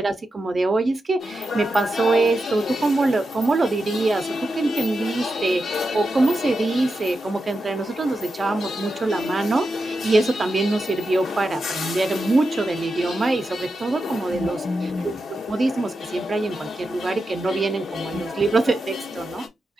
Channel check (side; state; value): both; normal; correlation 0.89